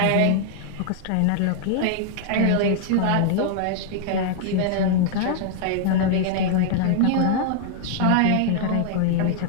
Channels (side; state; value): both; different; correlation 0.00